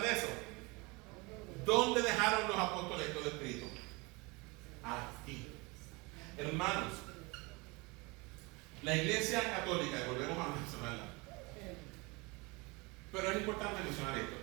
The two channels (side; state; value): left; quieter; 26.3 dB